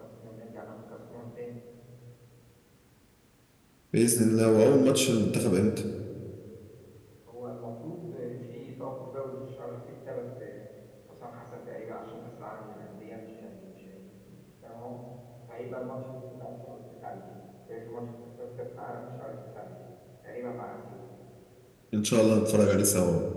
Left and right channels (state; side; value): identical; both; correlation 1.00